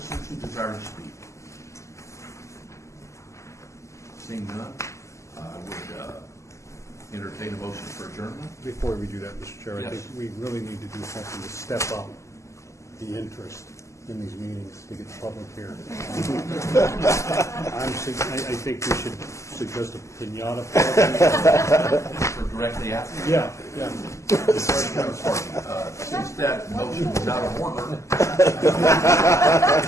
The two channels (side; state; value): right; late; 0.14 ms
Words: who desire to speak? Seeing none, I would entertain a motion for adjournment. Before we do that, Mr. Chair, I Yes. think we really need to do something to step up the interest in these meetings to get the public here. I think we should suggest a pinata party. For directly after? Yeah. Since that motion was out of order.